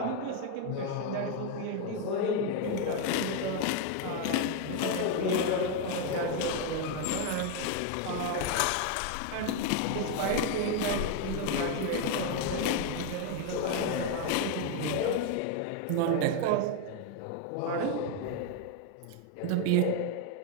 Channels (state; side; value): different; both; correlation 0.01